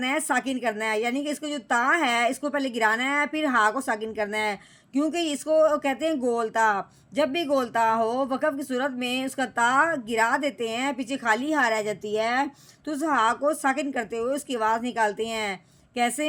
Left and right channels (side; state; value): both; identical; correlation 1.00